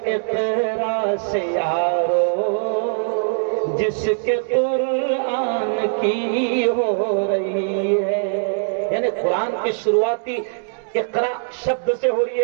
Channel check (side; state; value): left; silent; digital silence